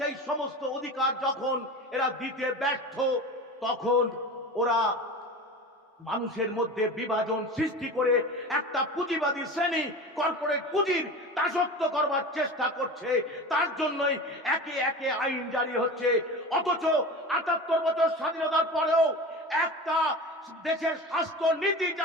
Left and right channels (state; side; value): normal; both; correlation 0.31